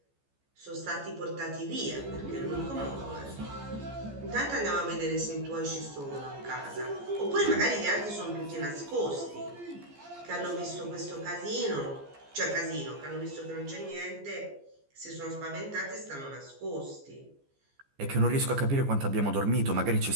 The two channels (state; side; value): late; left; 14 ms